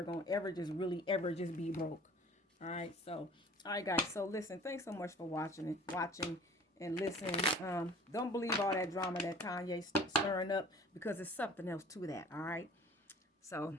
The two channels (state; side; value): normal; both; correlation 0.48